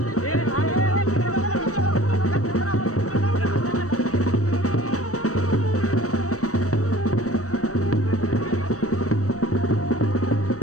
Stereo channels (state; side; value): late; right; 0.65 ms